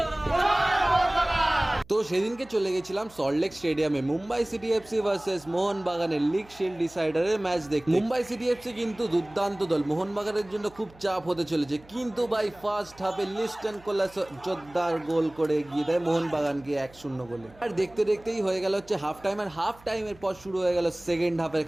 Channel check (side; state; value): right; noise; hum, 24 dB below the sound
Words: তো সেদিনকে চলে গেছিলাম সল্টলেক স্টেডিয়ামে মুম্বাই সিটি এফসি ভার্সেস মোহনবাগানের লিগ শিল্ড ডিসাইডারের ম্যাচ দেখতে। মুম্বাই সিটি এফসি কিন্তু দুর্দান্ত দল, মোহনবাগানের জন্য খুব চাপ হতে চলেছে, কিন্তু ভাই ফার্স্ট হাফে লিস্টন কোলাস জোরদার গোল করে এগিয়ে দেয় মোহনবাগানকে 1-0 গোলে। আর দেখতে দেখতেই হয়ে গেল হচ্ছে হাফ টাইম, আর হাফ টাইমের পর শুরু হয়ে গেল সেকেন্ড হাফের